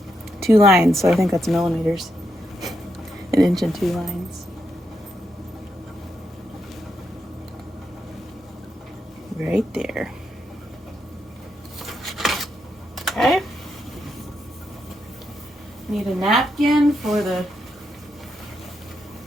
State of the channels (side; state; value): both; normal; correlation 0.82